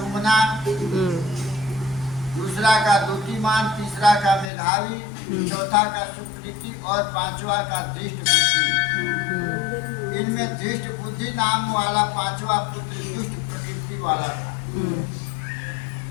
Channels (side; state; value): right; drops out; at 4.5 s